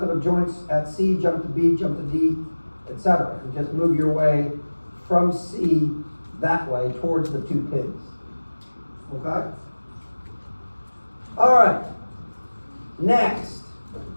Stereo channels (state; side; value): inverted; both; correlation -1.00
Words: of joints at C, jump to B, jump to D, etc. And just move your way from C that way towards the two pins. Okay? All right. Next.